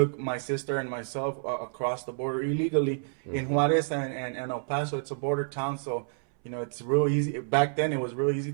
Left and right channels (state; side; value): silent; left; 59 dB below the other